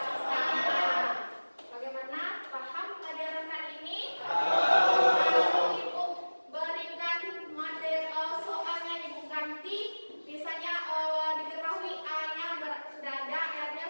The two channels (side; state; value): both; inverted; correlation -1.00